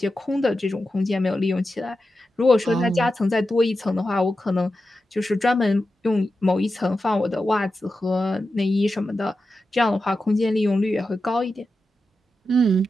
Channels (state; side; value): normal; both; correlation 0.91